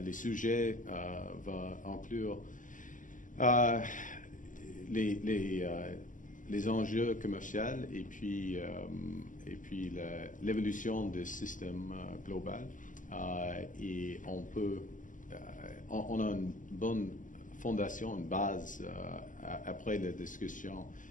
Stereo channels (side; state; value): right; late; 0.38 ms